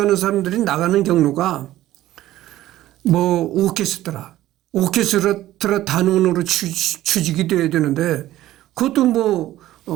사람들이 나가는 경로가 오케스트라 단원으로 취직이 돼야 되는데 그것도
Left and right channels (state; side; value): quieter; left; 14.6 dB